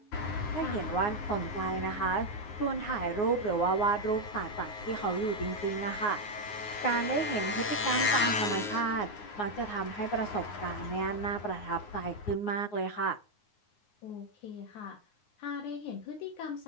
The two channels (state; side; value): late; right; 9.6 ms